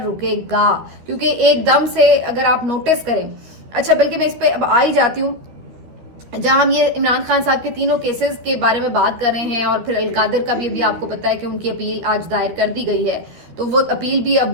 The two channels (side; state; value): left; late; 13 ms